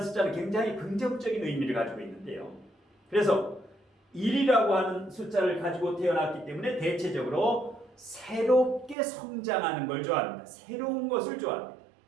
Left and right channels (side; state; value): left; drops out; at 9.0 s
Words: 숫자는 굉장히 긍정적인 의미를 가지고 있는데요. 그래서 1이라고 하는 숫자를 가지고 태어났기 때문에 대체적으로 새롭게 성장하는 걸 좋아합니다. 새로운 것을 좋아합니다.